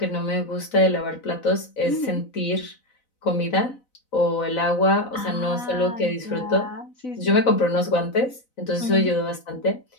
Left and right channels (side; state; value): right; late; 4.0 ms